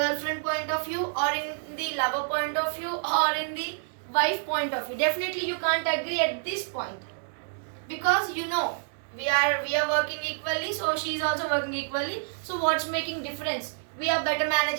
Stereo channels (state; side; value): silent; left; digital silence